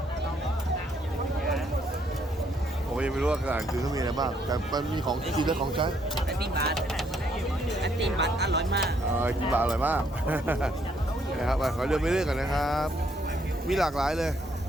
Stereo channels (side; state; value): both; normal; correlation 0.70